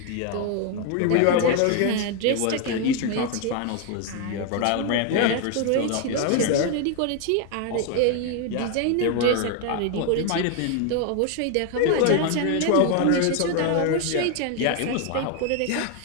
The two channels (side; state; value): both; different; correlation 0.01